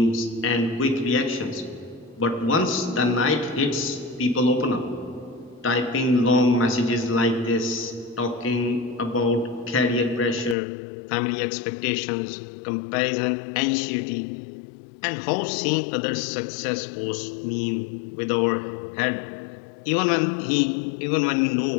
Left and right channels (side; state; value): right; drops out; at 10.6 s